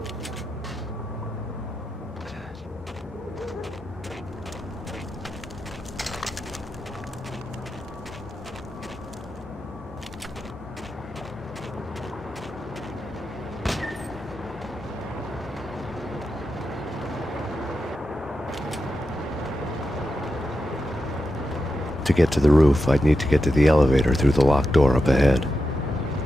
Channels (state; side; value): normal; both; correlation 0.89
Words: get to the roof, I'd need to get to the elevator through the locked door up ahead.